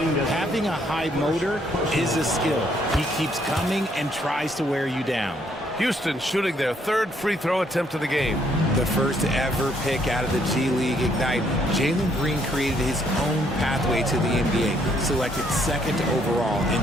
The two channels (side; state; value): both; normal; correlation 0.69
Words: a high motor is a skill. He keeps coming and tries to wear you down. Houston shooting their third free throw attempt of the game. The first ever pick out of the G League Ignite, Jalen Green created his own pathway to the NBA, selected second overall in